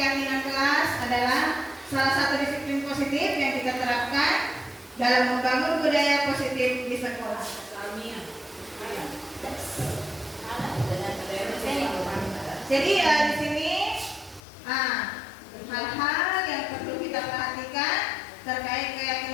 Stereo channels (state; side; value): drops out; right; at 14.4 s